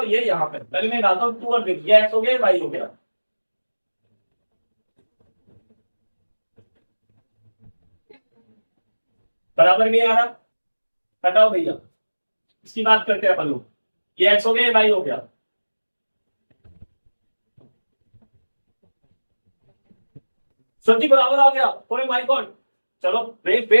ये यहाँ पे, पहले मैं डालता हूँ 2 और 3, ये एक्स हो गया, वाई हो गया। बराबर नहीं आ रहा, हटाओ भैया, इसकी बात करते हैं अपन लोग। ये एक्स हो गया, वाई हो गया। सच्ची बराबर आ गया, ओए माय गॉड। चलो वेट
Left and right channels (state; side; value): inverted; both; correlation -1.00